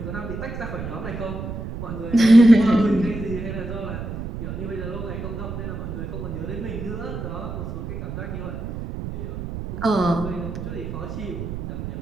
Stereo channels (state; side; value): noise; right; rumble, 7 dB below the sound